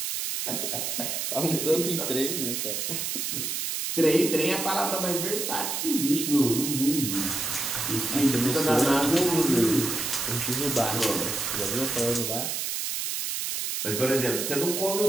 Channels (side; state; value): right; noise; hiss, 2 dB below the sound